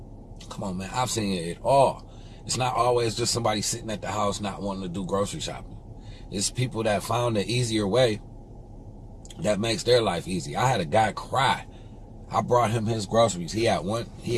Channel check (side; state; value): both; identical; correlation 1.00